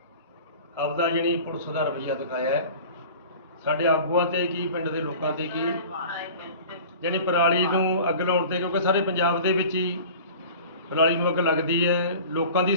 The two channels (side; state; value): both; inverted; correlation -0.40